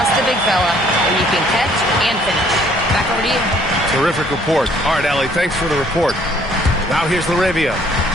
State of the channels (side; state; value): both; normal; correlation 0.61